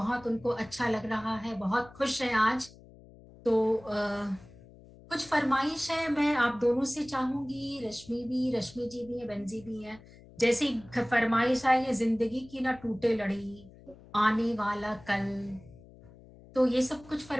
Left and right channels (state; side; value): noise; left; hum, 22 dB below the sound